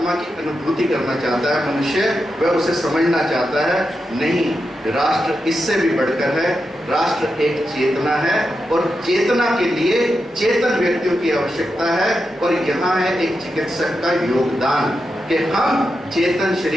की अनुभूति करना चाहता है मनुष्य, वह उसे समझना चाहता है? नहीं, राष्ट्र इससे भी बढ़कर है। राष्ट्र एक चेतना है और चेतना के लिए चेतन व्यक्तियों की आवश्यकता है। और यहाँ है एक चिकित्सक का योगदान कि हम चेतन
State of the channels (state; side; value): normal; both; correlation 0.87